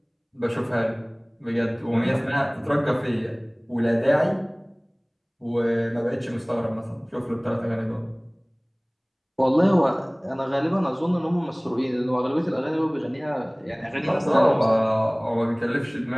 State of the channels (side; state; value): both; identical; correlation 1.00